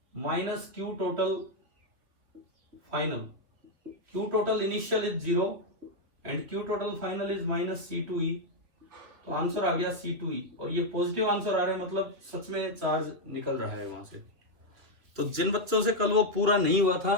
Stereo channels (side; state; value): left; late; 3.0 ms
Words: minus Q total final. Q total initial is 0 and Q total final is minus C2E। तो आंसर आ गया C2E, और ये पॉजिटिव आंसर आ रहा है, मतलब सच में चार्ज निकल रहा है वहां से। तो जिन बच्चों से कल वो पूरा नहीं हुआ था,